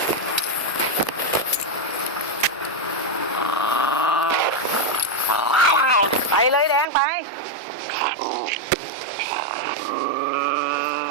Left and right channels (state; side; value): drops out; left; at 6.9 s